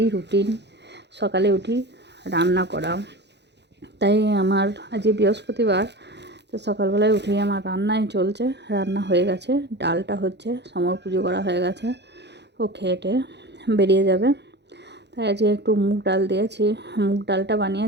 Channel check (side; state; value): left; late; 0.50 ms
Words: রুটিন। সকালে উঠি রান্না করা, তাই আমার আজ বৃহস্পতিবার, তো সকালবেলায় উঠেই আমার রান্নাই চলছে। রান্না হয়ে গেছে, ডালটা হচ্ছে, সমর পুজো করা হয়ে গেছে, ও খেয়ে বেরিয়ে যাবে। তাই আজকে একটু মুগ ডাল দিয়েছি, মুগ ডালটা